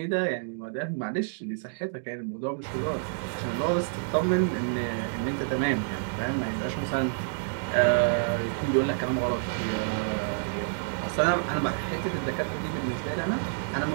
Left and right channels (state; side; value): silent; left; digital silence